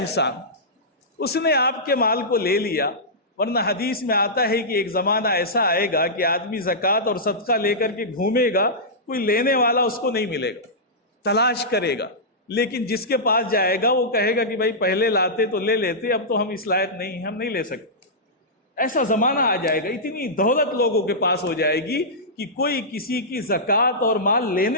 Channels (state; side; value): normal; both; correlation -0.14